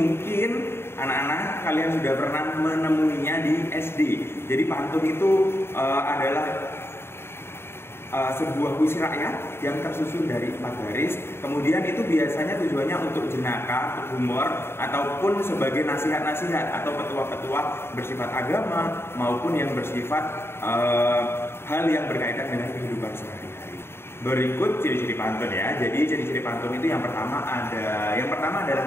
anak-anak kalian sudah pernah menemuinya di SD. Jadi pantun itu adalah sebuah puisi rakyat yang tersusun dari 4 baris. Kemudian itu biasanya tujuannya untuk jenaka, untuk humor, ataupun sebagai nasihat-nasihat atau petua-petua bersifat agama maupun yang bersifat hal yang berkaitan dengan kehidupan sehari-hari. Berikut ciri-ciri pantun ya. Jadi ciri-ciri pantun itu yang pertama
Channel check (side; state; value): right; late; 0.12 ms